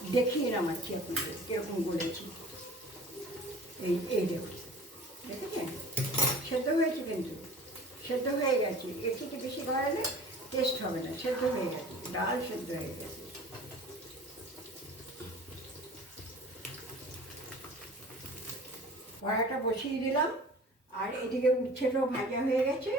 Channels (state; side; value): normal; both; correlation 0.44